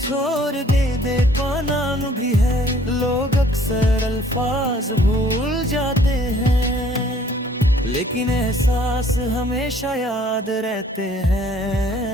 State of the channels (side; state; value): both; normal; correlation 0.57